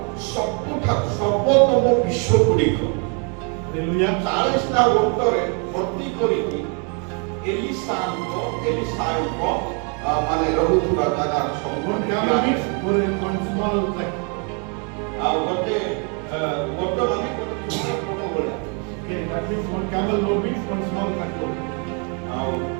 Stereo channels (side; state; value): left; quieter; 36.9 dB